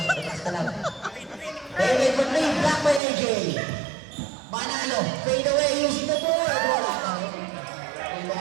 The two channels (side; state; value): left; drops out; at 3.0 s